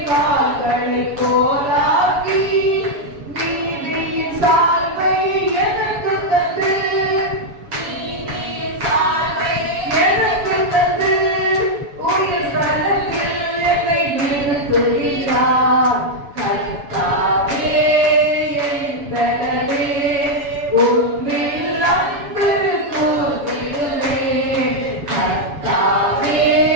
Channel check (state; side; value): late; left; 7.1 ms